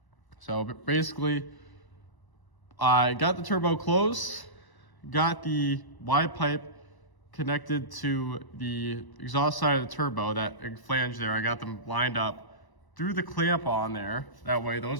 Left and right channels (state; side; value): late; right; 1.0 ms